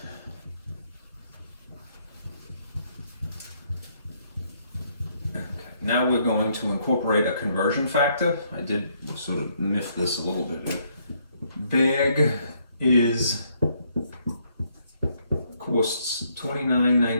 Okay. Now we're going to incorporate a conversion factor. I did sort of miff this a little bit. Bag is costs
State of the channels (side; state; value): both; inverted; correlation -0.71